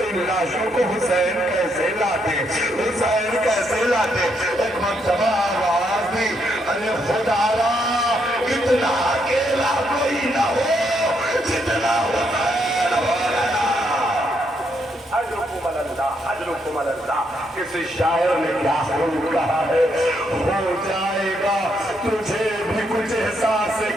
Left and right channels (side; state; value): both; normal; correlation 0.76